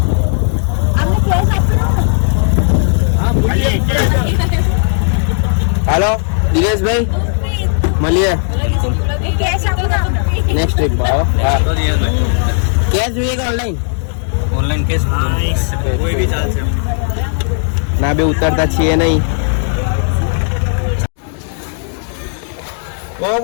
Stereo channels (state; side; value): silent; right; digital silence